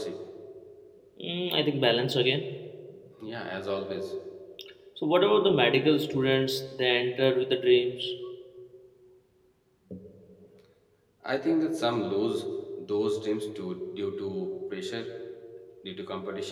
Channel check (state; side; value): identical; both; correlation 1.00